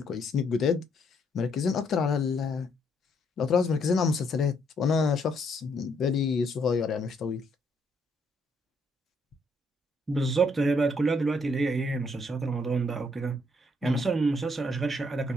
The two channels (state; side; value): normal; both; correlation 0.71